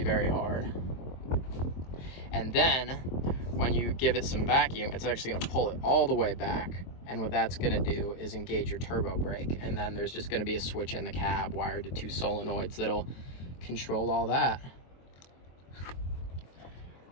very hard. And then when you give it some vacuum, it's actually going to pull it all the way back, and what that's going to do is engage your turbo brake. And then there's just going to be a switch in the cab wired to 2 solenoids that'll control all that.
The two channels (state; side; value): late; right; 23 ms